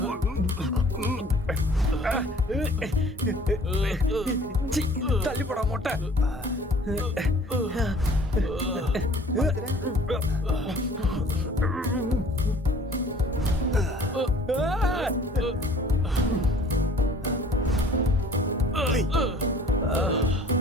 சி, தள்ளி போடா மொட்டை.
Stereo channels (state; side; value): normal; both; correlation 0.51